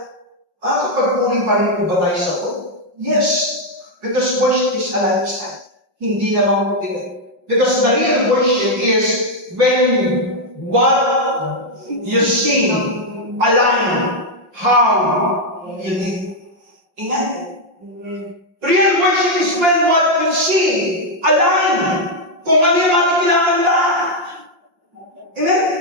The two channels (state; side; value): late; left; 5.8 ms